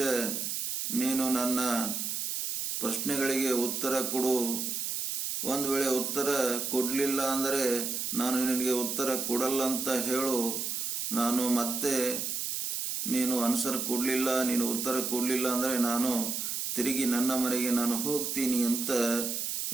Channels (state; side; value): noise; right; hiss, 2 dB below the sound